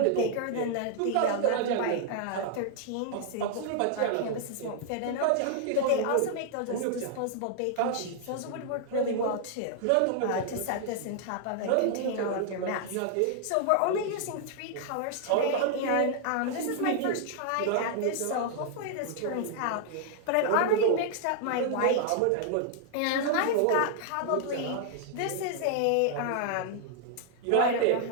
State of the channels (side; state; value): both; different; correlation -0.01